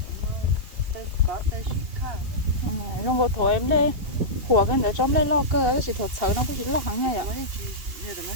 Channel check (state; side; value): late; left; 2.8 ms